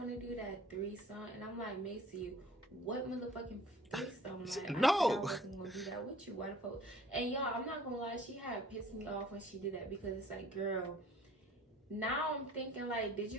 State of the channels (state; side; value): normal; both; correlation 0.52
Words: to do that threesome? And I'm like, Macy, what motherfucking threesome? Like, no, I wasn't gonna do that with you. Why the fuck? And y'all, I'm not gonna lie, she had pissed me off when she did that, because it's like, girl, now I'm thinking like, did